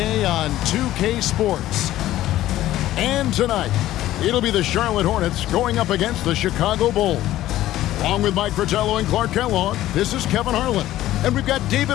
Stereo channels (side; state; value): right; quieter; 14.4 dB